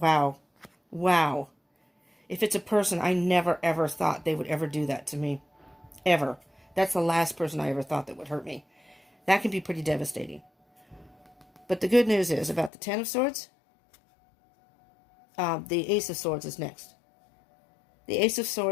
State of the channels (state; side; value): drops out; right; at 12.7 s